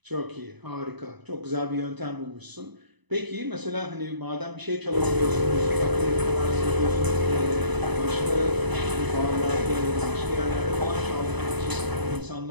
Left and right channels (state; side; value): late; left; 1.0 ms